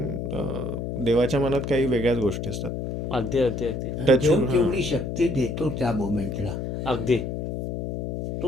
देवाच्या मनात काही वेगळ्याच गोष्टी असतात. अगदी अगदी अगदी Touch- देव तेवढी शक्ती देतो त्या मोमेंटला, अगदी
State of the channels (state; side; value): noise; left; hum, 4 dB below the sound